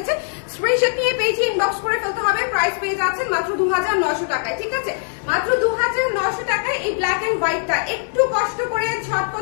স্ক্রিনশট নিয়ে পেজে ইনবক্স করে ফেলতে হবে। প্রাইস পেয়ে যাচ্ছে মাত্র 2900 টাকায়, ঠিক আছে? মাত্র 2900 টাকায় এই ব্ল্যাক এন্ড হোয়াইটটা একটু কষ্ট করে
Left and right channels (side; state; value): right; silent; 62 dB below the other